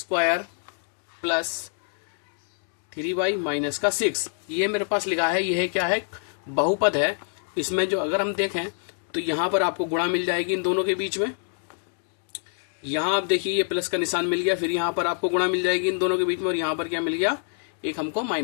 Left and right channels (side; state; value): right; silent; digital silence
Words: प्लस 3y माइनस का 6, ये मेरे पास लिखा है। यह क्या है? बहुपद है। इसमें जो अगर हम देखें तो यहां पर आपको गुणा मिल जाएगी इन दोनों के बीच में। यहां आप देखिए, ये प्लस का निशान मिल गया, फिर यहां पर आपको गुणा मिल जाएगी इन दोनों के बीच में, और यहां पर क्या मिल गया? एक हमको